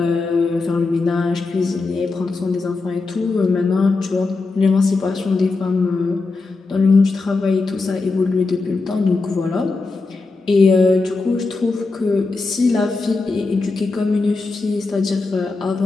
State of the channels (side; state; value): right; quieter; 3.8 dB